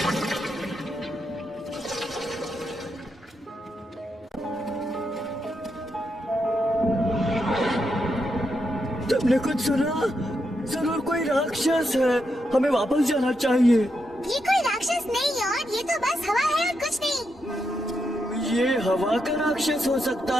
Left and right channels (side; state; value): both; normal; correlation 0.83